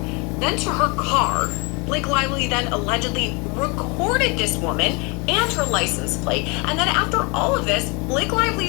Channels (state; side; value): quieter; right; 29.7 dB